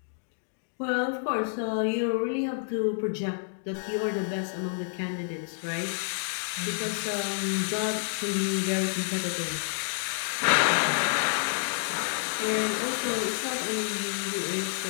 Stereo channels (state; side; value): silent; right; digital silence